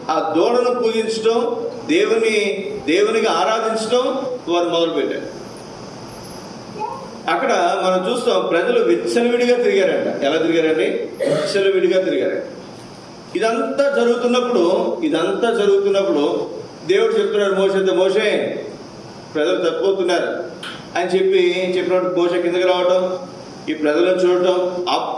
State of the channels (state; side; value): identical; both; correlation 1.00